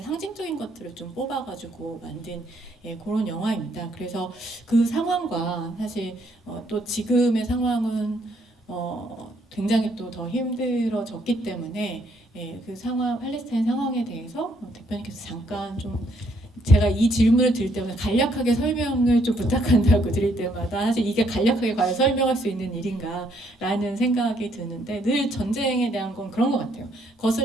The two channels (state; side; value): normal; both; correlation 0.70